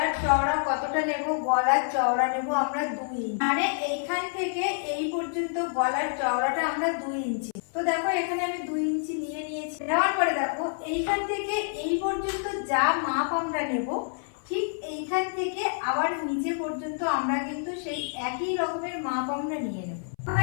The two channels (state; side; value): silent; right; 60 dB below the other